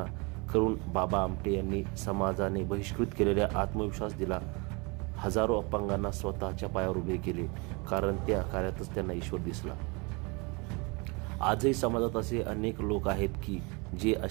करून बाबा आमटे यांनी समाजाने बहिष्कृत केलेल्या आत्मविश्वास दिला। हजारो अपंगांना स्वतःच्या पायावर उभे केले, कारण त्या कार्यातच त्यांना ईश्वर दिसला। आजही समाजात असे अनेक लोक आहेत की जे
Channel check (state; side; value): quieter; left; 29.2 dB